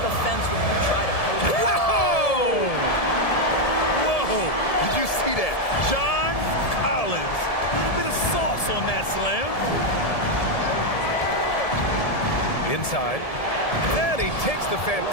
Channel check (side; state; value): right; late; 1.7 ms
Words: when you try to post. Whoa! Whoa! Did you see that? John Collins. A little bit of sauce on that slam. Inside. And he takes the